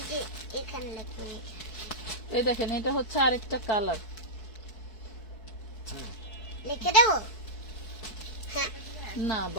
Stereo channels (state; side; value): late; right; 4.6 ms